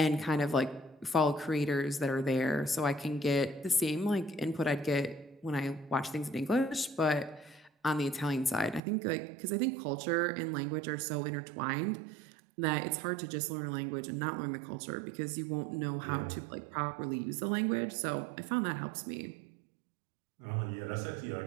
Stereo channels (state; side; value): drops out; left; at 8.8 s